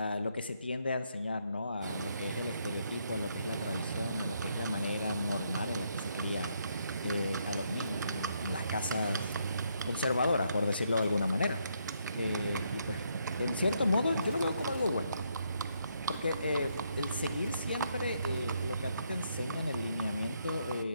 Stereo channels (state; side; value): inverted; both; correlation -0.75